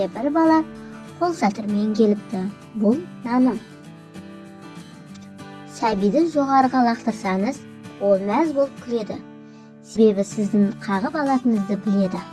бір бала қол шатырмен келіпті. Бұл наным. Сәбиді жоғарыға лақтырсаңыз, ол мәз болып күледі. Себебі сіздің қағып алатыныңызды біледі.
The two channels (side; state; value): both; identical; correlation 1.00